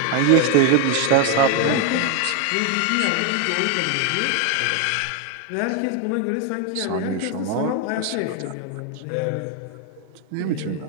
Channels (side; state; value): both; different; correlation 0.01